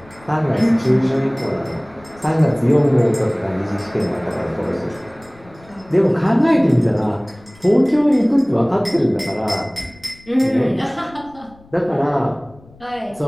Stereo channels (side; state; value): left; noise; rumble, 26 dB below the sound